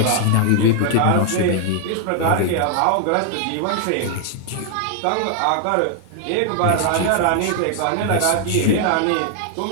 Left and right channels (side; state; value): both; different; correlation 0.00